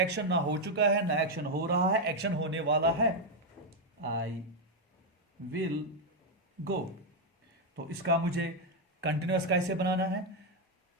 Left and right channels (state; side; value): normal; both; correlation 0.02